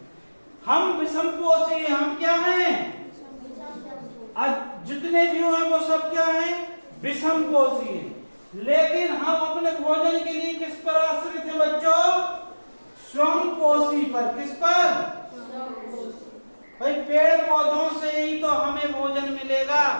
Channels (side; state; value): both; inverted; correlation -1.00